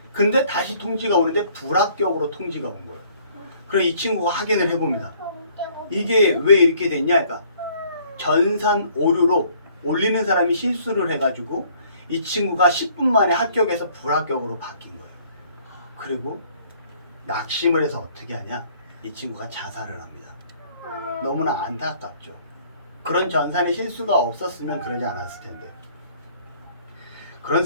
근데 다시 통지가 오는데 불합격으로 통지가 온 거예요. 그래서 이 친구가 확인을 해봅니다. 이게 왜 이렇게 됐냐? 그러니까 전산 오류로 올리는 사람이 실수를 해가지고 이 친구가 10분 만에 합격해서 불합격으로 바뀐 거예요. 그리고 낙심을 해서 어떻게 하냐? 이 친구가 자살을 합니다. 너무나 안타깝죠. 그런 전산에 실수가 없었으면 그러지 않았을 텐데. 그런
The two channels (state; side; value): inverted; both; correlation -0.60